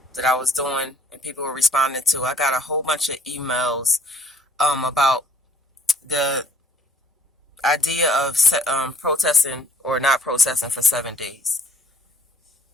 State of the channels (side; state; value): both; normal; correlation 0.61